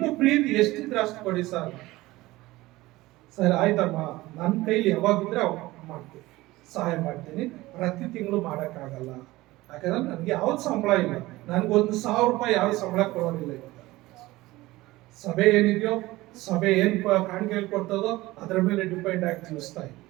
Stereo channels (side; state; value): left; quieter; 18.9 dB